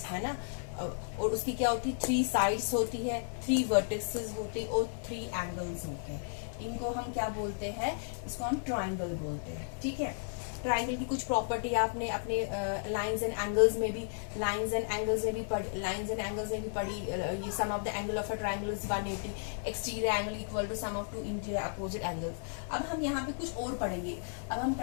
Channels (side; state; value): right; silent; 55 dB below the other